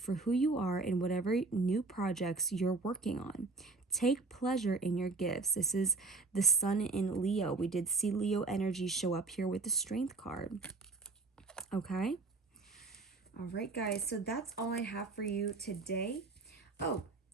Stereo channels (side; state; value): left; quieter; 3.7 dB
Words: who you are in whatever new projects you're working on. Take pleasure in your gifts. This is the sun in Leo. We did see Leo energy show up here with the strength card. Okay? All right, guys. So that's all I have for you today. Oh,